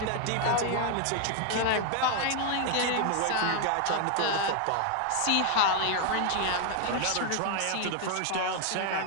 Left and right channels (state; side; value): different; both; correlation 0.00